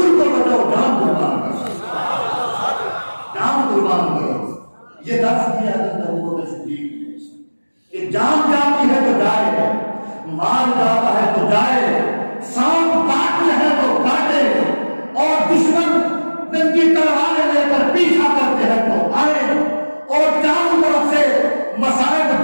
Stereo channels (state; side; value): inverted; both; correlation -1.00